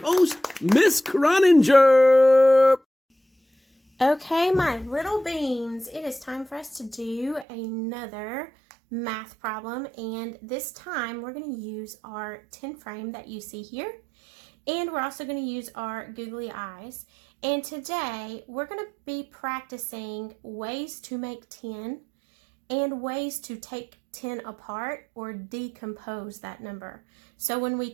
Miss Croninger. Okay, my little beans, it is time for us to do another math problem, and this time we're going to use our 10 frame that you see here, and we're also going to use our googly eyes. And today we're going to be practicing ways to make 10 and ways to take 10 apart or decompose that number. So when we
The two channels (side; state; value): left; drops out; at 7.5 s